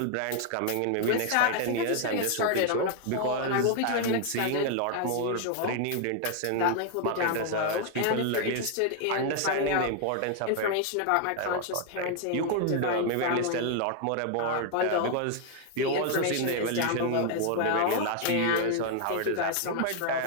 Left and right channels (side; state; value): both; different; correlation 0.00